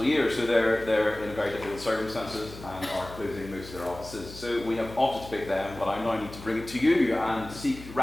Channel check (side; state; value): left; noise; hum, 15 dB below the sound